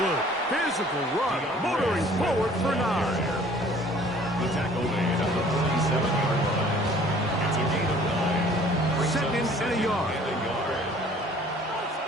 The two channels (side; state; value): both; normal; correlation 0.53